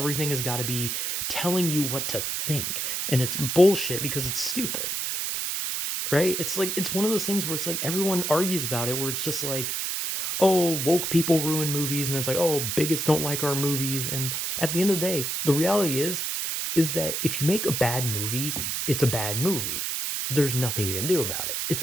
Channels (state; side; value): noise; right; hiss, 1 dB below the sound